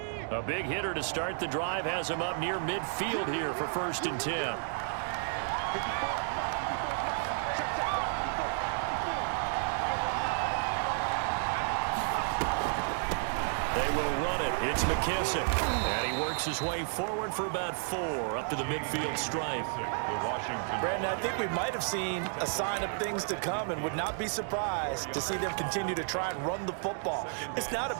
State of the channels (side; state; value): left; silent; 55 dB below the other